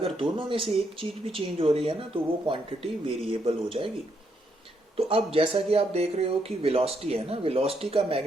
दोनों में से एक चीज भी चेंज हो रही है ना तो वो क्वांटिटी वेरिएबल हो जाएगी। तो अब जैसा कि आप देख रहे हो कि वेलोसिटी है ना, वेलोसिटी का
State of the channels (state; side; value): normal; both; correlation 0.76